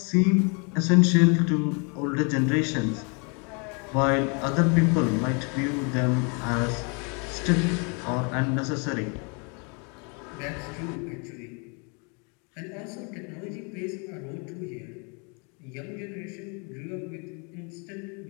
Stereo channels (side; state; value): right; quieter; 34.7 dB